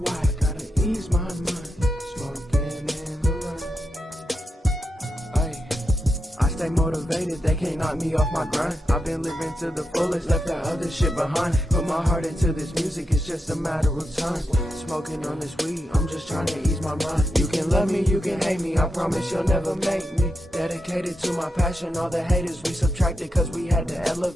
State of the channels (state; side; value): normal; both; correlation 0.87